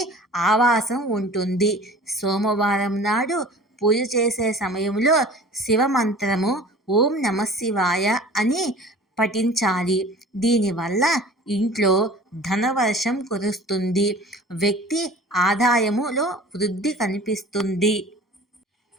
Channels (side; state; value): both; normal; correlation 0.43